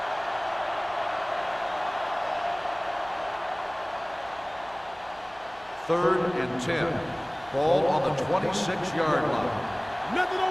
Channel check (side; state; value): right; noise; hum, 25 dB below the sound